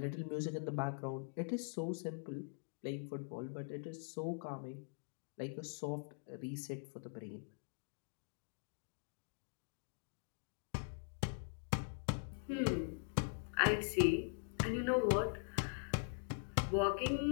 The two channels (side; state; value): right; silent; digital silence